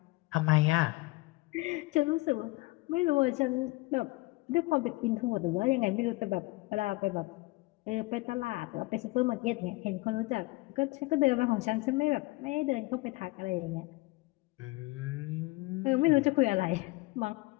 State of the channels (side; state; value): right; quieter; 22.4 dB